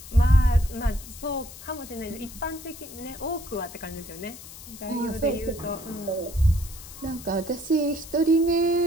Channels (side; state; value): left; noise; hiss, 15 dB below the sound